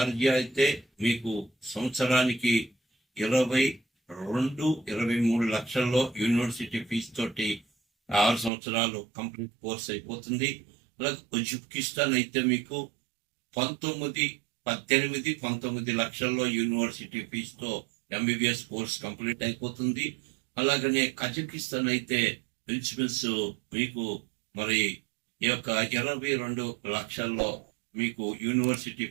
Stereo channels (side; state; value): left; drops out; at 8.5 s